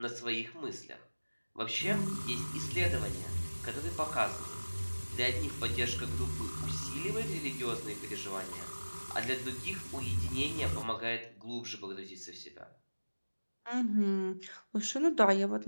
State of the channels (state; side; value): inverted; both; correlation -1.00